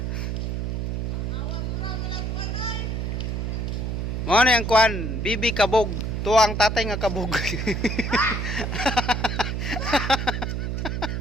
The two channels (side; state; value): right; noise; hum, 1 dB below the sound